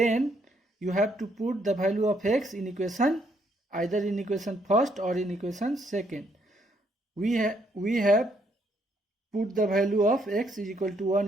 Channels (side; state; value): both; normal; correlation 0.71